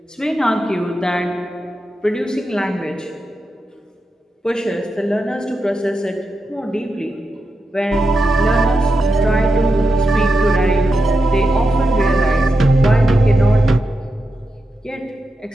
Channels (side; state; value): both; normal; correlation 0.88